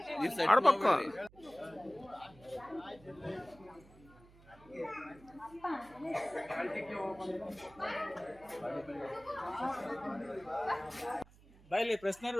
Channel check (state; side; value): noise; right; hum, 24 dB below the sound